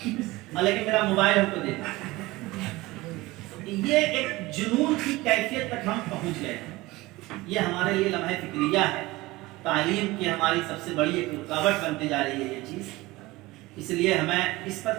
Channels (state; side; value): quieter; left; 20.3 dB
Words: لیکن میرا موبائل ہم کو دے دیں۔ یہ ایک جنون کی کیفیت تک ہم پہنچ گئے ہیں۔ یہ ہمارے لیے لمحہ فکریہ ہے، تعلیم کی ہماری سب سے بڑی ایک رکاوٹ بنتے جا رہی ہے یہ چیز، اس لیے ہمیں اس پر